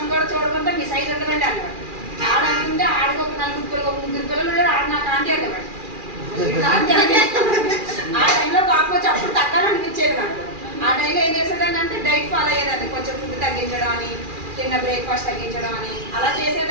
కూడా చూడకుండా మీ సైజ్ ఉండదండి అనేవాడు. ఆడనుకుంటే ఆడికి ఒక 4 పిల్లలు ఆడ నాకు ఆంటీ అనేవాడు. ఆ టైంలో పాపం వచ్చి అప్పుడు తగ్గాలనిపించేది నాకు. ఆ టైంలో ఏం చేసేదాన్ని అంటే డైట్ ఫాలో అయ్యేదాన్ని, కొంచెం ఫుడ్ తగ్గించడం అని, తిన్న బ్రేక్ఫాస్ట్ తగ్గించడం అని అలా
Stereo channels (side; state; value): left; late; 2.4 ms